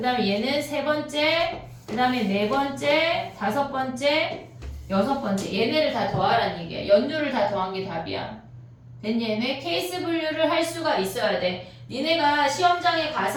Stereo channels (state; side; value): identical; both; correlation 1.00